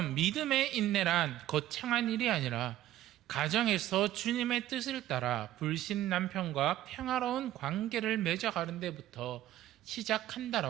믿음의 인내란 거창한 일이 아니라 가정에서 주님의 뜻을 따라 불신 남편과 평화로운 관계를 맺어가는 데부터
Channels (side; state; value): left; quieter; 13.8 dB